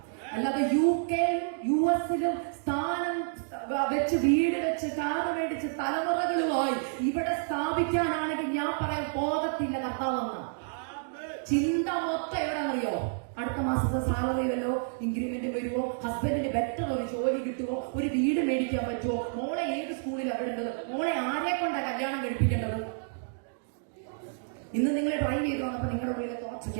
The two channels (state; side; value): silent; left; digital silence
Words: അല്ലാതെ UK US സ്ഥാനം വെച്ച്, വീട് വെച്ച്, കാറ് മേടിച്ച് തലമുറകളുമായി ഇവിടെ സ്ഥാപിക്കാനാണെങ്കിൽ ഞാൻ പറയാൻ പോകത്തില്ല കർത്താവെന്ന ചിന്ത മൊത്തം എവിടെന്നറിയോ? അടുത്ത മാസത്തെ സാലറി വല്ലോ ഇൻക്രിമെന്റ് വരുമോ, ഹസ്ബൻഡിന് ബെറ്റർ ഒരു ജോലി കിട്ടുമോ, ഒരു വീട് മേടിക്കാൻ പറ്റുമോ, മോളെ ഏത് സ്കൂളിൽ വിടേണ്ടത്, മോളെ ആരെ കൊണ്ടാ കല്യാണം കഴിപ്പിക്കേണ്ടത്? ഇന്ന് നിങ്ങളെ ഡ്രൈവ് ചെയ്ത് വന്നപ്പോ നിങ്ങളുടെ ഉള്ളിലെ തോച്ചയ്ക്ക്